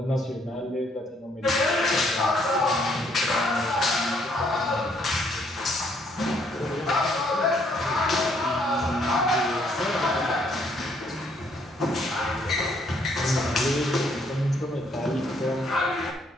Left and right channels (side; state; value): both; normal; correlation 0.68